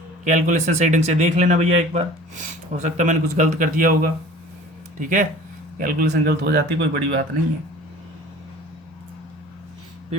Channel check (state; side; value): normal; both; correlation 0.44